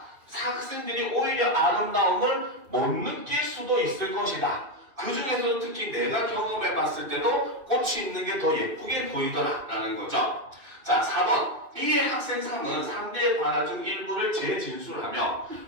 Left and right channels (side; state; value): left; late; 2.5 ms